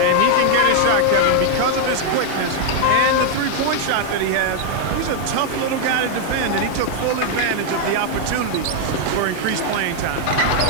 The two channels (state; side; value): different; both; correlation 0.00